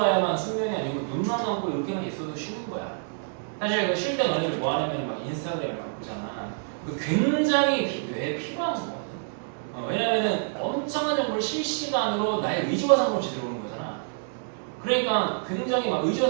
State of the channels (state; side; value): silent; left; 60 dB below the other